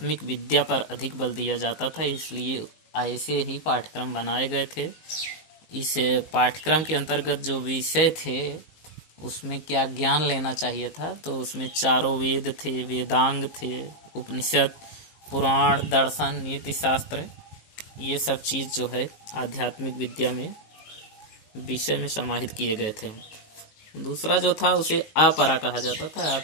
विद्या पर अधिक बल दिया जाता था, इसलिए ऐसे ही पाठ्यक्रम बनाए गए थे। इस पाठ्यक्रम के अंतर्गत जो विषय थे उसमें क्या ज्ञान लेना चाहिए था, तो उसमें चारों वेद थे, वेदांग थे, उपनिषद, पुराण, दर्शन, नीति शास्त्र, ये सब चीज़ जो है आध्यात्मिक विद्या में विषय में समाहित किए गए थे। दूसरा जो था उसे अपरा कहा जाता था,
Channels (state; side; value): late; right; 19 ms